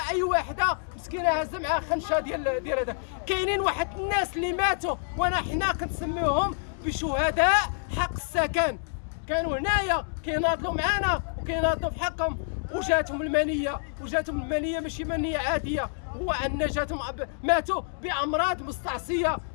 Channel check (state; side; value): silent; right; digital silence